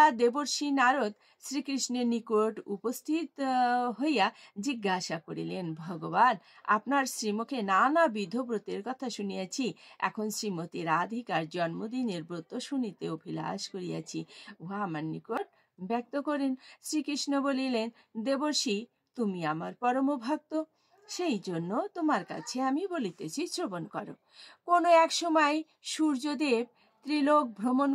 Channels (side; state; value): both; identical; correlation 1.00